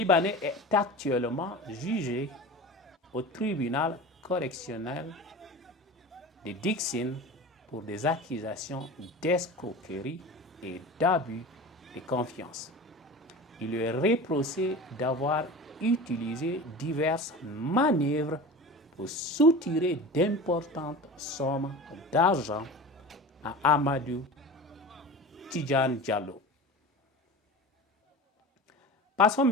est actuellement jugé au tribunal correctionnel de Dixine pour des accusations d'escroquerie et d'abus de confiance. Il lui est reproché d'avoir utilisé diverses manœuvres pour soutirer d'importantes sommes d'argent à Amadou Tidjane Diallo. Passons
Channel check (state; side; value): normal; both; correlation 0.33